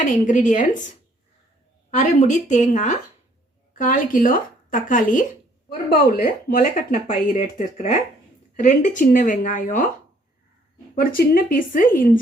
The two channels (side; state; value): both; normal; correlation 0.63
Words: இன்கிரீடியன்ட்ஸ்: அரை முடி தேங்காய், 1/4 கிலோ தக்காளி, ஒரு பவுல் முளை கட்டின பயிர் எடுத்துருக்கிறேன், 2 சின்ன வெங்காயம், ஒரு சின்ன பீஸு